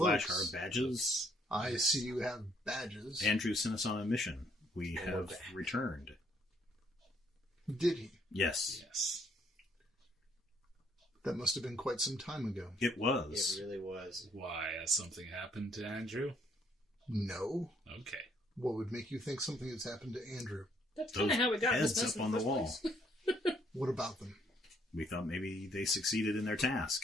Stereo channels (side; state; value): both; normal; correlation 0.68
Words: cloaks. our badges. I see you have badges. Andrew sent us on a mission. We have returned. Did he? Yes. That must have been quite some time ago. It was. It really was. Why? Has something happened to Andrew? No. Okay. What would make you think something has happened to Andrew? That's kind of how we got this heads mess up in on the the first wall. place. What about them? We thought maybe they succeeded in their